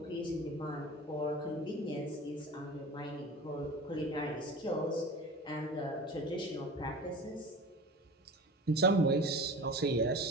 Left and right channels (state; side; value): normal; both; correlation 0.35